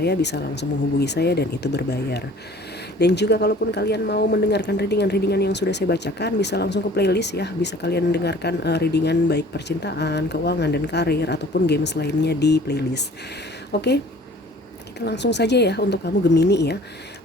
bisa langsung menghubungi saya dan itu berbayar. Dan juga kalaupun kalian mau mendengarkan readingan-readingan yang sudah saya bacakan, bisa langsung ke playlist ya. Bisa kalian dengarkan readingan baik percintaan, keuangan, dan karir, ataupun games lainnya di playlist. Oke, kita langsung saja ya untuk kamu Gemini ya.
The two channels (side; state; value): both; normal; correlation 0.50